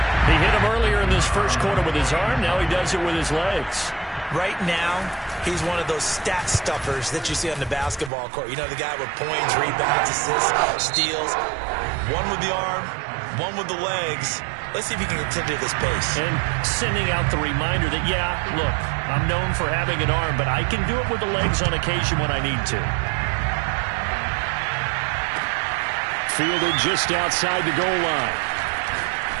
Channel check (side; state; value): left; drops out; at 8.1 s